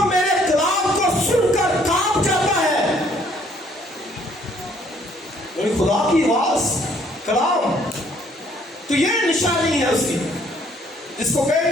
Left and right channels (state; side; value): normal; both; correlation 0.63